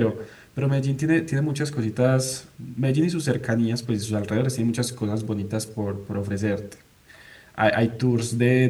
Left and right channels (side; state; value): both; identical; correlation 1.00